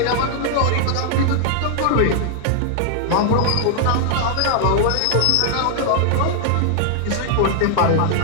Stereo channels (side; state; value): both; different; correlation -0.01